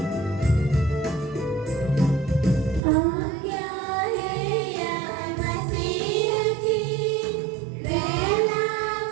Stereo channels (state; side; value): drops out; left; at 2.8 s